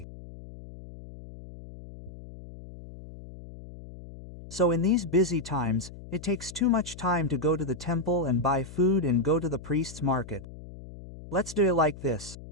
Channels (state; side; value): noise; left; hum, 15 dB below the sound